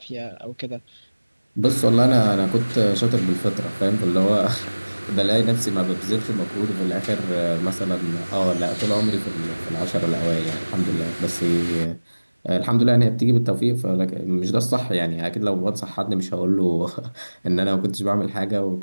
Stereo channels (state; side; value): inverted; both; correlation -1.00